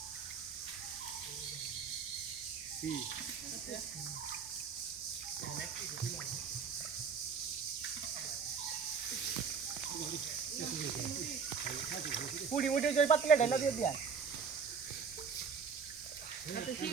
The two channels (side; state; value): left; quieter; 5.9 dB